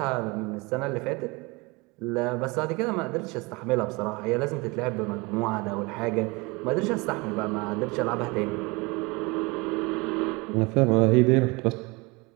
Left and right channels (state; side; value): quieter; left; 26.0 dB